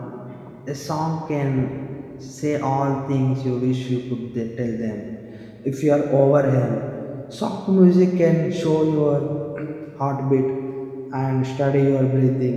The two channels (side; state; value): both; identical; correlation 1.00